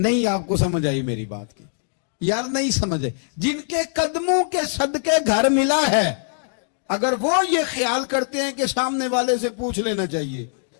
آپ کو سمجھ آئی میری بات کی یار, نہیں سمجھے. جن کے قدموں کے صدقے گھر ملا ہے, اگر وہ یہ خیال کرتے ہیں کہ سامنے والے سے پوچھ لینا چاہیے,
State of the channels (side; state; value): right; silent; digital silence